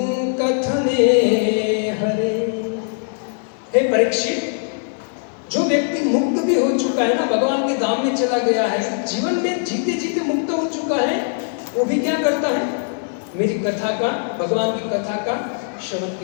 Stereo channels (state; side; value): silent; right; 65 dB below the other